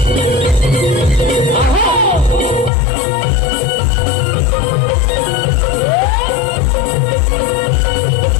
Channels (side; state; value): right; drops out; at 2.7 s